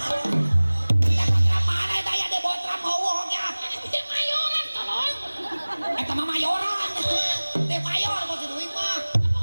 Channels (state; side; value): inverted; both; correlation -1.00